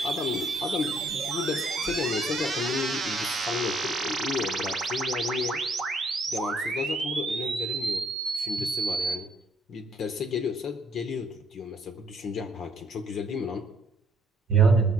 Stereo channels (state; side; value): normal; both; correlation 0.65